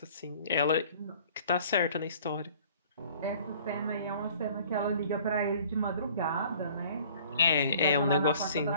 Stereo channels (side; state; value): both; inverted; correlation -0.52